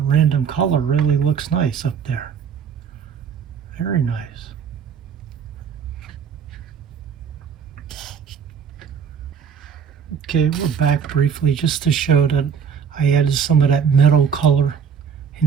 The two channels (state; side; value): quieter; left; 7.1 dB